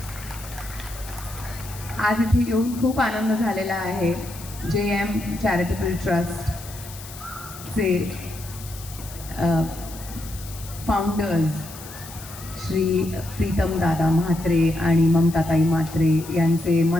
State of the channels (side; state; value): left; noise; hiss, 15 dB below the sound